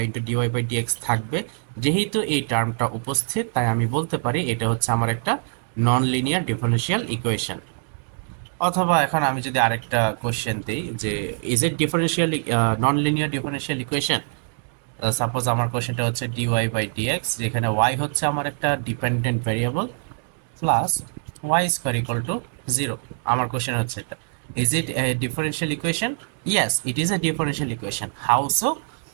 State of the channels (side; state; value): left; silent; digital silence